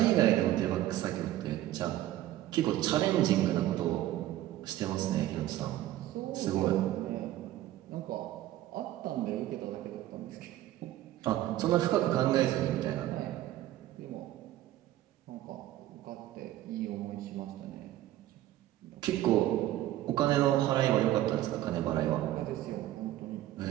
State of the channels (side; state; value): left; quieter; 14.3 dB